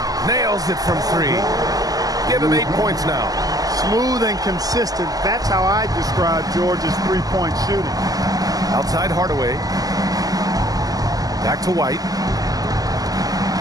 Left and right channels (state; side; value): late; left; 0.17 ms